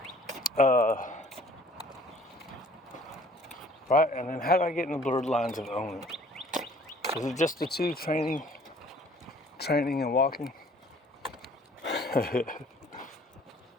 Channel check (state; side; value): normal; both; correlation 0.54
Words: Right, and then how do I get in the blurred lines of owning? Is it just the two, training and walking?